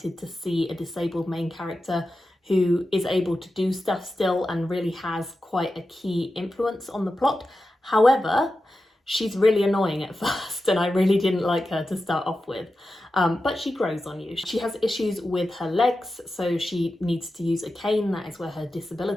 to see a disabled main character who is able to do stuff still and really has quite a key influence on the plot. However, she's really annoying at first and I really didn't like her to start off with. But she grows on you. She has issues with her legs, so she needs to use a cane. That is where her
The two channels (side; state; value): both; normal; correlation 0.92